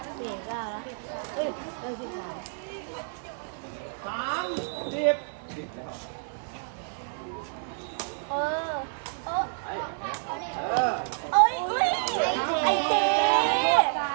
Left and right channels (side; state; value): left; silent; digital silence